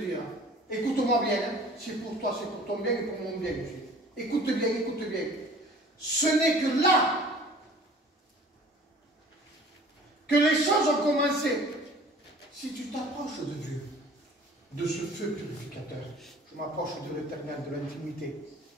dis. Écoute-moi bien. Hein. C'est pour toi, c'est pour ton bien et pour mon bien aussi. Écoute bien, écoute bien. Ce n'est que là que les choses ont commencé. Si tu t'approches de Dieu, de ce feu purificateur, je m'approche de l'éternel, de l'intimité,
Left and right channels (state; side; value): normal; both; correlation 0.47